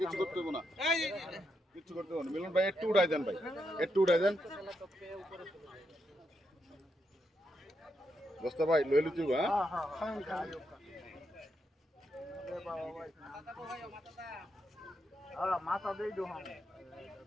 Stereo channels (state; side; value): normal; both; correlation 0.82